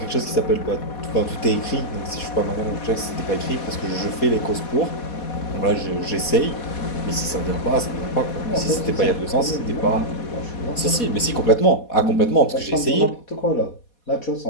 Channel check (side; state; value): right; late; 4.2 ms